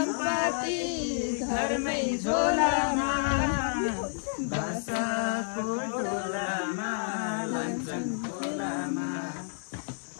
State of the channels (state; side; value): silent; right; digital silence